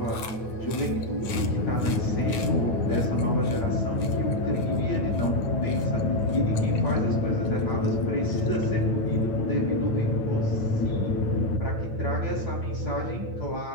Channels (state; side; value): late; right; 9.0 ms